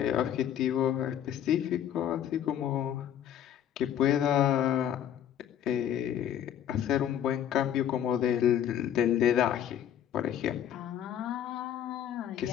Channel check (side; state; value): right; quieter; 10.2 dB